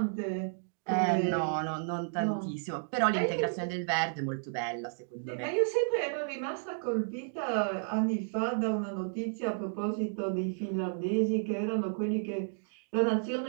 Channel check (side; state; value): left; silent; digital silence